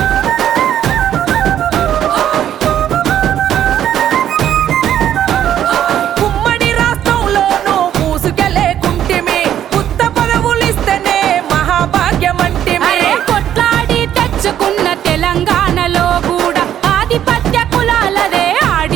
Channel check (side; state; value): left; quieter; 10.7 dB